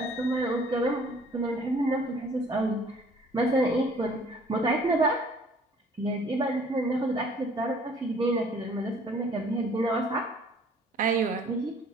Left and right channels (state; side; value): normal; both; correlation 0.55